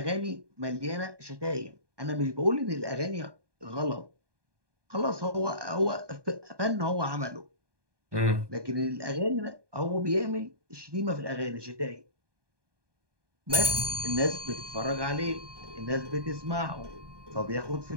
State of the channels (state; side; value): late; left; 1.2 ms